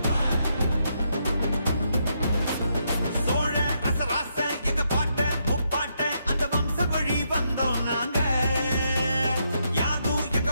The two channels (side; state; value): both; inverted; correlation -0.78